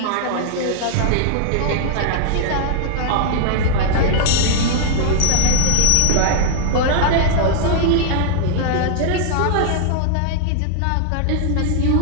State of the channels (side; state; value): both; different; correlation -0.01